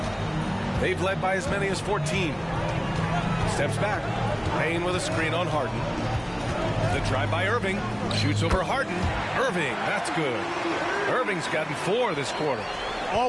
They've led by as many as 14. Steps back. Payne with a screen on Harden. The drive by Irving. Shoots over Harden. Irving, that's good. Irving's gotten 4 this quarter.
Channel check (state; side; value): identical; both; correlation 1.00